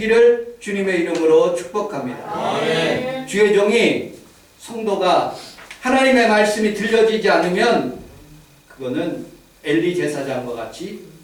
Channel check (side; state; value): both; identical; correlation 1.00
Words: 주님의 이름으로 축복합니다. 아멘. 주의 종이 성도가 하나님의 말씀이 들려지지 않으면 그거는 엘리 제사장과 같이